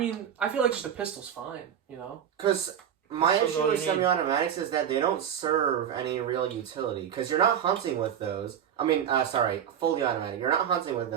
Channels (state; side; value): quieter; left; 9.1 dB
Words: I feel like just a pistol's fine. You know. Because my issue with semi-automatics is that they don't serve any real utility. Because you're not hunting with those. I mean, fully automatic. You're not hunting with